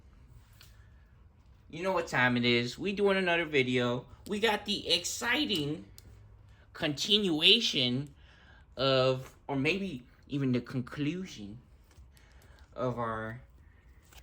You know what time it is. We doing another video. We got the exciting continuation of, or maybe even the conclusion of our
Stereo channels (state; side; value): identical; both; correlation 1.00